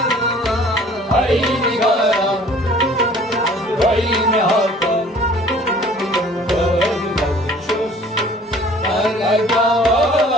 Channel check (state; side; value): normal; both; correlation 0.51